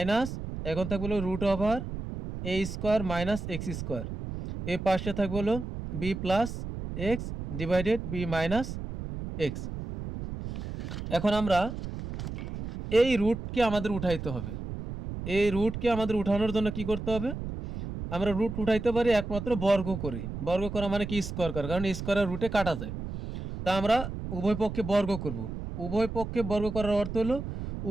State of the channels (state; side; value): noise; right; rumble, 7 dB below the sound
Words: এখন থাকবে হলো রুট ওভার এ স্কোয়ার মাইনাস এক্স স্কোয়ার, এ পাশে থাকবে হলো b plus x divided b minus x. এখন আমরা এই রুটকে আমাদের উঠাইতে হবে, এই রুটকে আমাদের উঠানোর জন্য কি করতে হবে? আমরা রুট উঠাইতে পারি একমাত্র বর্গ করে, বর্গ করা মানে কি স্কোয়ার করা, কারণ স্কোয়ারের রুটে কাটা যায়। তা আমরা উভয় পক্ষে বর্গ করব, উভয় পক্ষে বর্গ করার অর্থ হলো